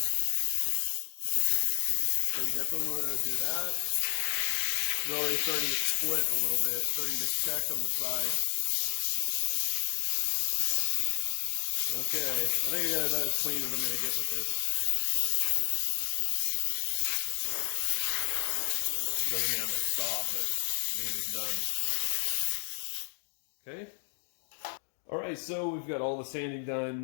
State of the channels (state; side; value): silent; right; digital silence